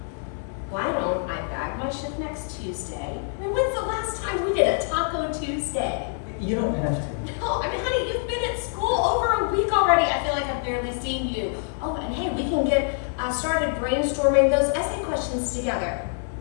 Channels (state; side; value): silent; right; 60 dB below the other